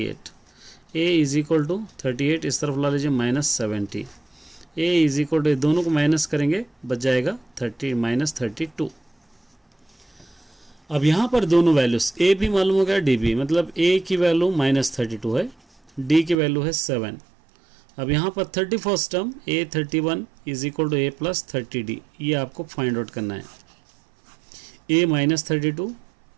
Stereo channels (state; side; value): drops out; left; at 16.4 s